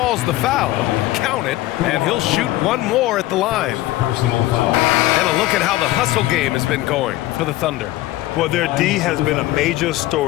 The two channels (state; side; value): quieter; right; 16.6 dB